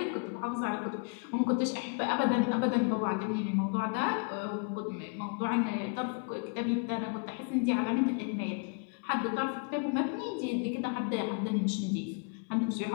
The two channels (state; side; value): quieter; right; 37.5 dB